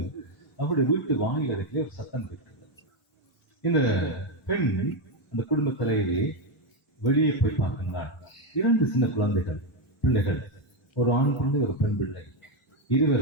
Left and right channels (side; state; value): both; normal; correlation 0.07